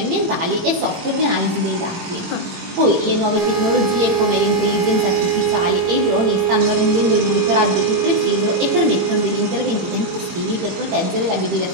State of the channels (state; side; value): late; left; 18 ms